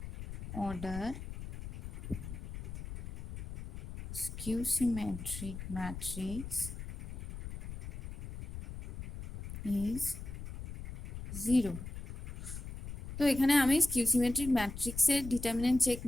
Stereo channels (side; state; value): left; noise; rumble, 9 dB below the sound